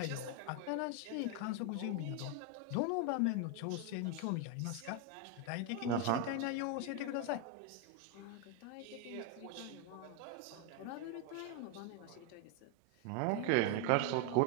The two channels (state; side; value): different; both; correlation 0.01